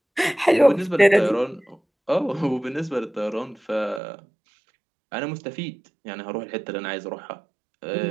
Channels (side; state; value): left; drops out; at 4.0 s